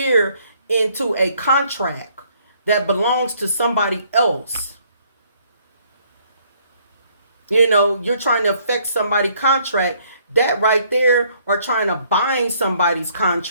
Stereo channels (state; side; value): inverted; both; correlation -0.65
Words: into a contract that belongs to somebody else. You know, you're trying to affect somebody's contract. That right there, or trying to bind somebody's